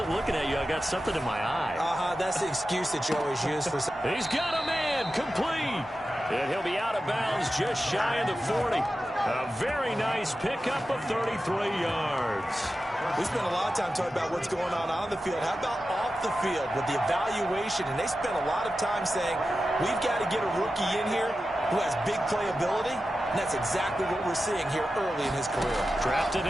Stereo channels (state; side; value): normal; both; correlation 0.92